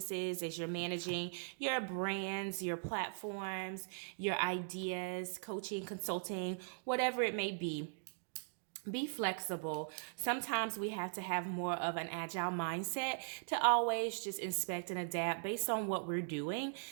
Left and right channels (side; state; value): left; silent; digital silence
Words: as you're managing your brands, your platforms, your ideas, coaching, consulting, whatever it may be. Be flexible. Sometimes we have to have more of an agile mindset to always just inspect and adapt based on what we're doing.